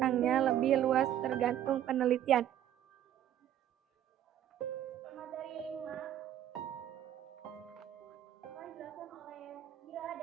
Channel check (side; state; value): left; quieter; 11.2 dB